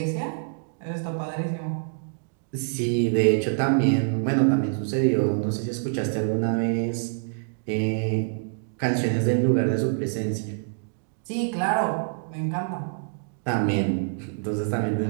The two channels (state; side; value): silent; left; digital silence